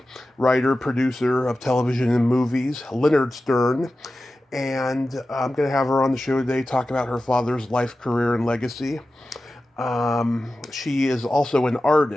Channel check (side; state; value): both; normal; correlation 0.94